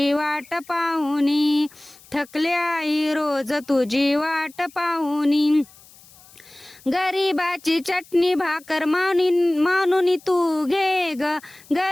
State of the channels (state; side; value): noise; left; hiss, 25 dB below the sound